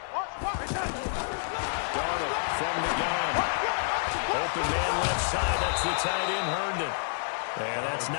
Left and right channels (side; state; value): right; silent; 59 dB below the other